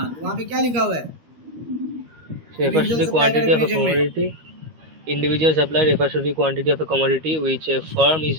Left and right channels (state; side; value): late; left; 13 ms